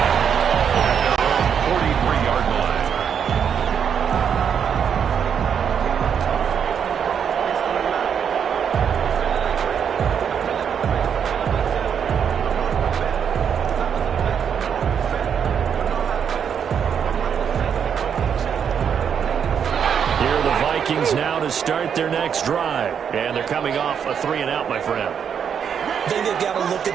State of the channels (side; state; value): left; quieter; 7.7 dB